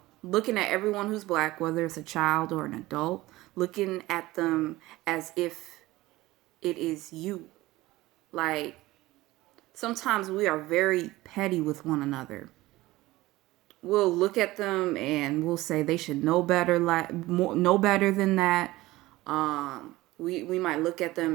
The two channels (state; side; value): quieter; left; 18.5 dB